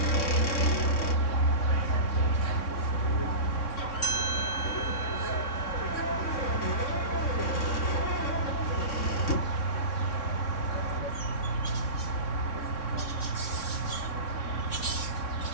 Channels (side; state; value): right; late; 3.6 ms